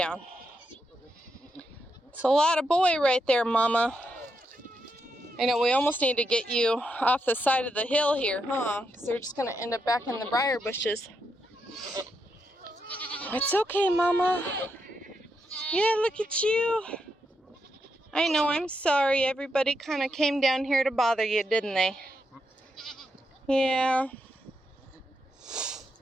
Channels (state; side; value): normal; both; correlation 0.82